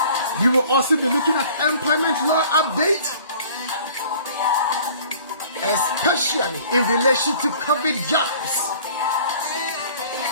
We will also be looking at employment law update, especially in relation to COVID jobs.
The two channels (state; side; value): inverted; both; correlation -0.50